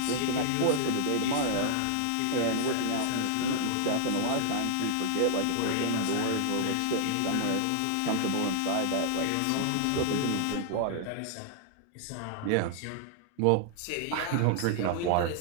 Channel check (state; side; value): different; both; correlation -0.01